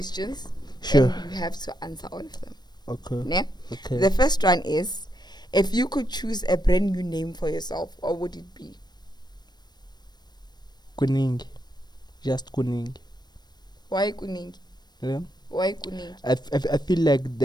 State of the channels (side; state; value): right; late; 0.20 ms